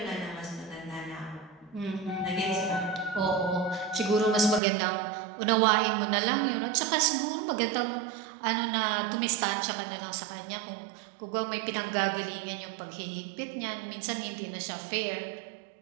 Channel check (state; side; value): drops out; left; at 4.6 s